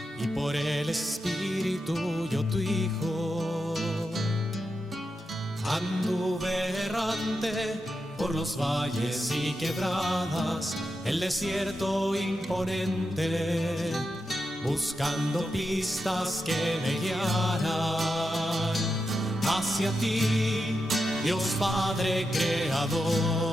y por el Espíritu yo tu Hijo. Anduve errante por los valles y quebradas, el desierto imponente, buscando pistas que me guiaran hacia ti, Dios Padre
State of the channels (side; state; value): both; normal; correlation 0.88